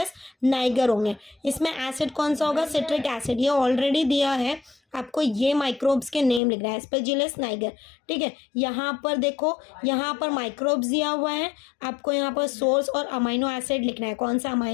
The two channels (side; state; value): right; drops out; at 6.4 s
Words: नाइगर होंगे। इसमें एसिड कौन सा होगा? Citric acid. ये ऑलरेडी दिया है, आपको ये माइक्रोब्स के नेम लिखना है, एस्पेजिलस नाइगर। ठीक है, यहाँ पर देखो, यहाँ पर माइक्रोब्स दिया हुआ है, आपको यहाँ पर सोर्स और अमाइनो एसिड लिखना है। कौन सा